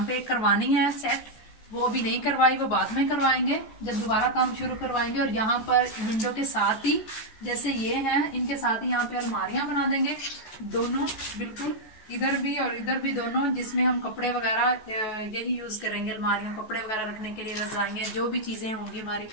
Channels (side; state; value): right; late; 14 ms